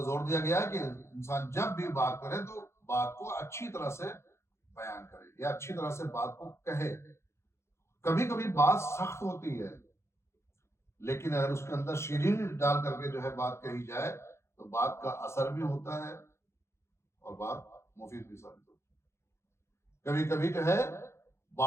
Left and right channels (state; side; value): late; right; 0.13 ms